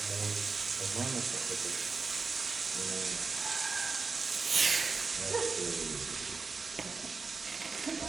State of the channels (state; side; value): quieter; left; 4.5 dB